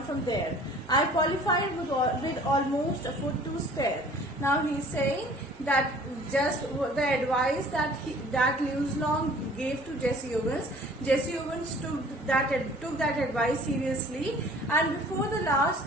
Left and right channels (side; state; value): both; normal; correlation 0.51